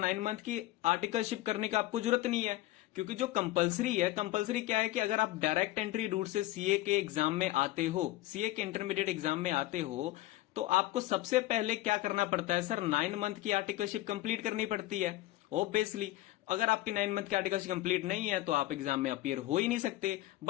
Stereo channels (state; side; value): quieter; right; 16.6 dB